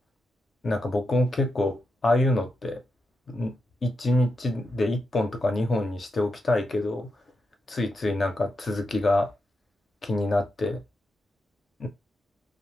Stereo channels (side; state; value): both; normal; correlation 0.87